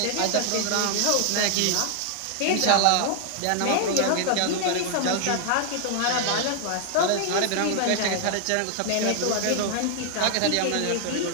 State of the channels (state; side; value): different; both; correlation 0.00